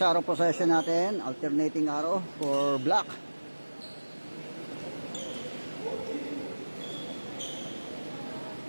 arrow possession natin, alternating arrow for black.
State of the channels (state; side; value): inverted; both; correlation -1.00